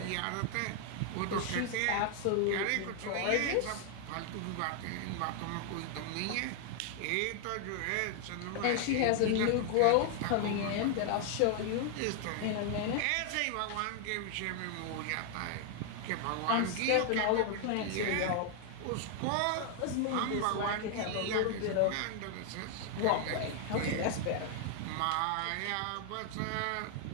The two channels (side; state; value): both; different; correlation 0.00